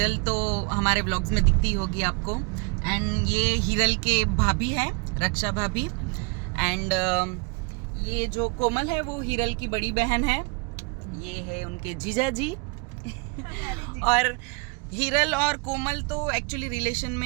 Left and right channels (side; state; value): left; quieter; 31.9 dB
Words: तो हमारे ब्लॉग्स में दिखती होगी आपको। एंड ये हिरल के भाभी है, रक्षा भाभी। एंड ये जो कोमल है वो हिरल की बड़ी बहन है। ये है उनके जीजा जी। और हिरल और कोमल तो एक्चुअली रिलेशन